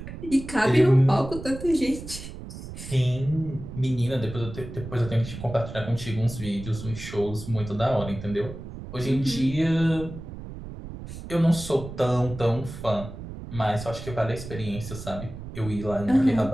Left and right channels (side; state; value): right; noise; rumble, 11 dB below the sound